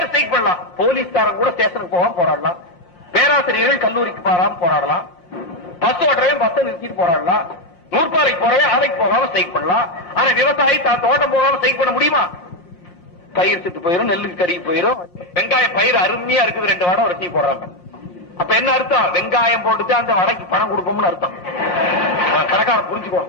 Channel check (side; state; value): right; late; 5.7 ms